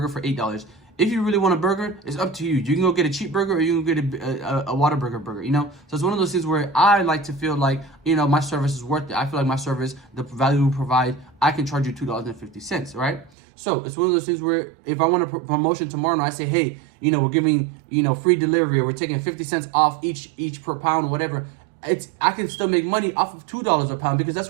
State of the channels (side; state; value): left; drops out; at 13.3 s